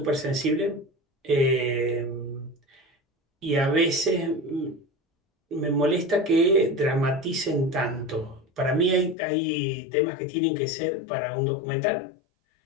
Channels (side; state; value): right; drops out; at 9.2 s